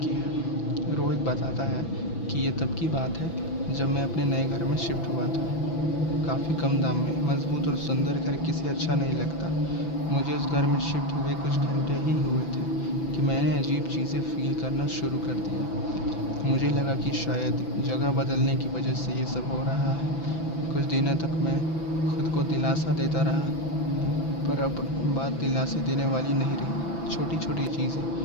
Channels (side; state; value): right; late; 6.0 ms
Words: है। रोहित बताता है कि ये तब की बात है जब मैं अपने नए घर में शिफ्ट हुआ था। काफ़ी कम दाम में मजबूत और सुंदर घर किसे अच्छा नहीं लगता। मुझे उस घर में शिफ्ट हुए कुछ घंटे ही हुए थे कि मैंने अजीब चीज़ें फील करना शुरू कर दिया। मुझे लगा कि शायद जगह बदलने की वजह से ये सब हो रहा है। कुछ दिनों तक मैं खुद को दिलासा देता रहा, पर अब बात दिलासे देने वाली नहीं रही। छोटी छोटी चीज़ें